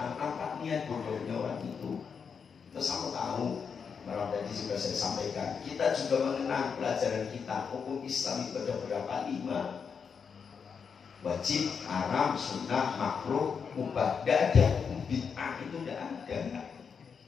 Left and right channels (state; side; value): quieter; right; 6.2 dB